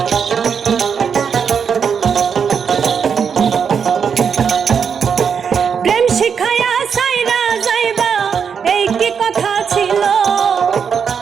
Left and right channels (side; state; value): left; quieter; 6.8 dB